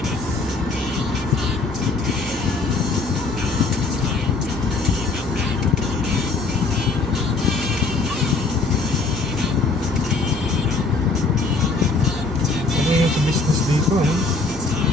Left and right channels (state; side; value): quieter; right; 3.7 dB